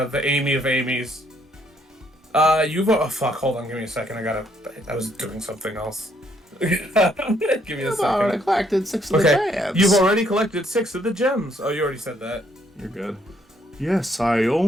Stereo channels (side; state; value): both; normal; correlation 0.69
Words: Amy of Amy's. Fuck, hold on, give me a second, I was doing something else. Give me a second. I collected 6 of the gems. You've already collected 6 of the gems. Oh, you already said that. You're good. Yes, I